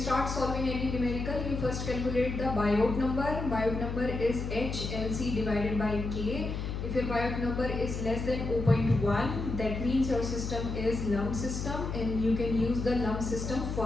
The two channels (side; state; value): left; noise; hum, 4 dB below the sound